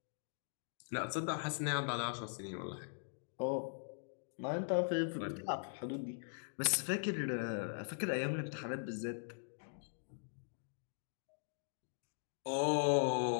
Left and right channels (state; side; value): silent; right; digital silence